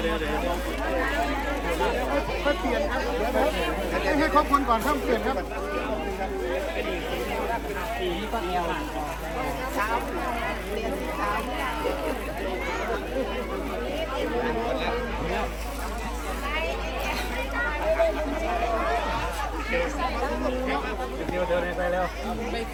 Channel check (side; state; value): both; identical; correlation 1.00